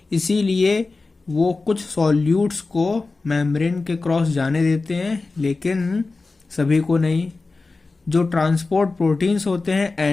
इसीलिए वो कुछ सॉल्यूट्स को मेम्ब्रेन के क्रॉस जाने देते हैं, लेकिन सभी को नहीं। जो ट्रांसपोर्ट प्रोटीन्स होते हैं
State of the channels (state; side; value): quieter; right; 3.7 dB